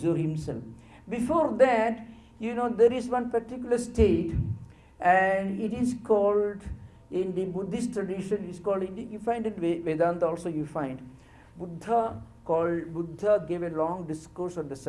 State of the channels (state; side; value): identical; both; correlation 1.00